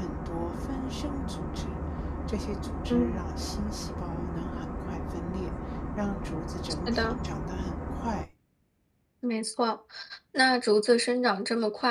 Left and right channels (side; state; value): both; identical; correlation 1.00